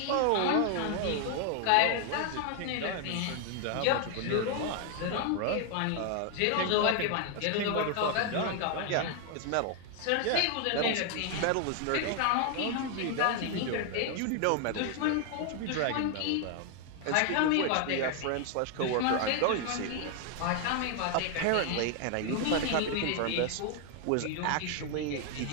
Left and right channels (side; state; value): both; different; correlation 0.00